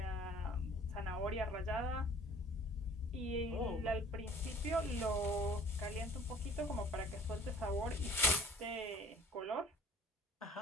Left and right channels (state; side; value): normal; both; correlation 0.51